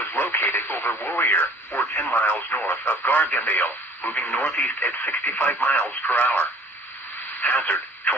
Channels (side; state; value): both; normal; correlation 0.50